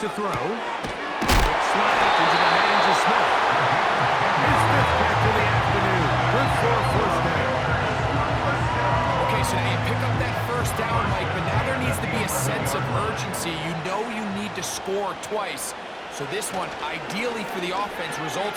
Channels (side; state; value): both; identical; correlation 1.00